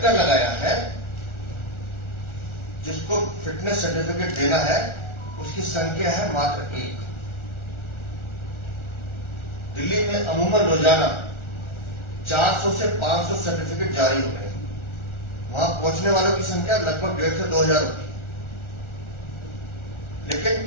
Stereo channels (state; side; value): late; right; 1.4 ms